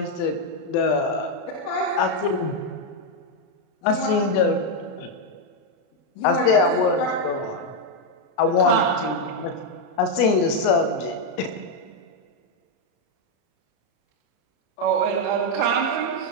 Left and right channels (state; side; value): late; right; 34 ms